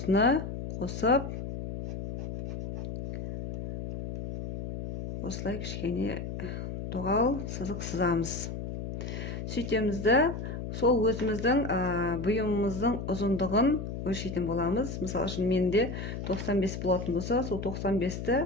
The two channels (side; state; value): left; noise; hum, 6 dB below the sound